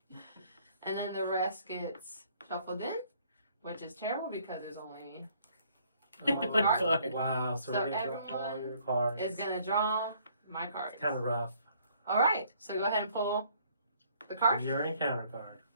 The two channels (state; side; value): inverted; both; correlation -0.62